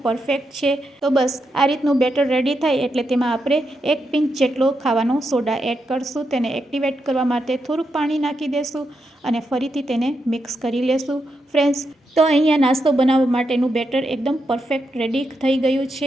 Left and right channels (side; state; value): both; normal; correlation 0.84